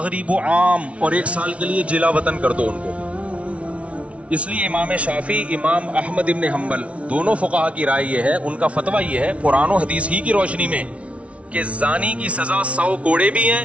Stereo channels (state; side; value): late; left; 0.063 ms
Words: عام, اور 1 سال کے لیے جلا وطن کر دو ان کو. اس لیے امام شافعی, امام احمد ابن حنبل دونوں فقہا کی رائے یہ ہے, ان کا فتویٰ یہ ہے قرآن و حدیث ہی کی روشنی میں کہ زانی کی سزا 100 کوڑے بھی